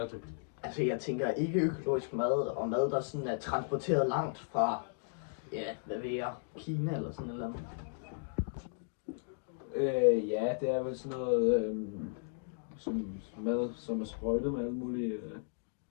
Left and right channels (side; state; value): right; silent; digital silence